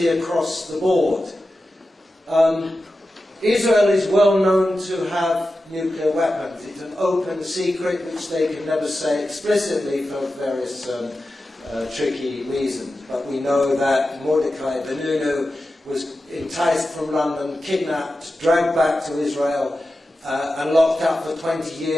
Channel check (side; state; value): both; normal; correlation 0.92